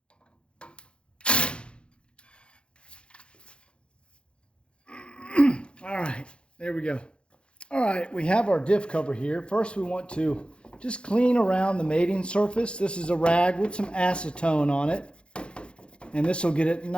All right, there we go. All right, we have our diff cover here. First, we want to just clean around the mating surface. This is a rag with some acetone on it. And this will get it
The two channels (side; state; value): right; late; 0.056 ms